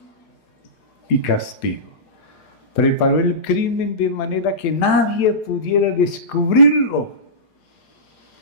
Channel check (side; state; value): right; late; 4.8 ms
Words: y Castigo. Preparó el crimen de manera que nadie pudiera descubrirlo.